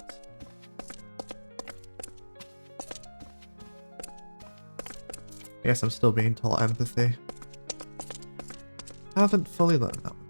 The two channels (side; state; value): both; inverted; correlation -1.00